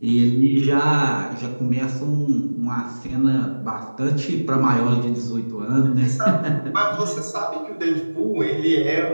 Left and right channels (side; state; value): both; inverted; correlation -1.00